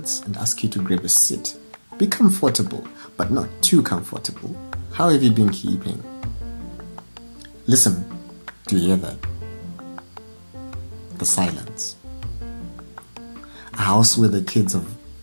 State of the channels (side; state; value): both; inverted; correlation -1.00